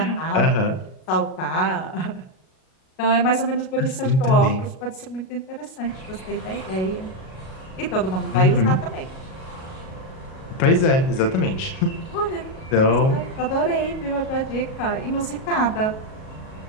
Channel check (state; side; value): late; right; 38 ms